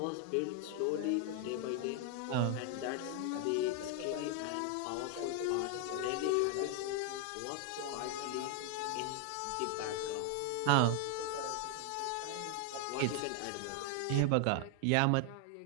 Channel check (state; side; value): different; both; correlation 0.00